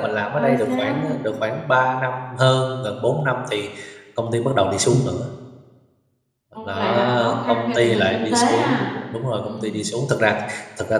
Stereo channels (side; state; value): both; identical; correlation 1.00